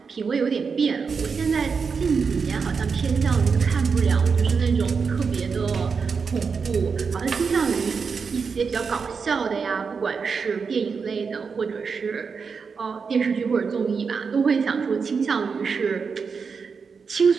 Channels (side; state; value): left; quieter; 5.5 dB